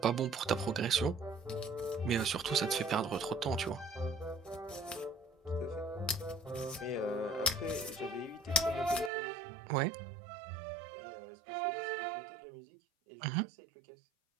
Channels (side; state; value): left; drops out; at 9.1 s